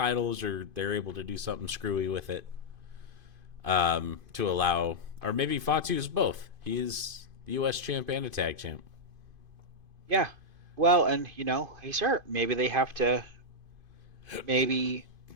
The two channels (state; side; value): late; left; 2.5 ms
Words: or they're able to do something screwy with it. To allow, or maybe Fatu's both. He is the U.S. champ and a tag champ. Yeah. Well, and he's hurt. Maybe they have to. Maybe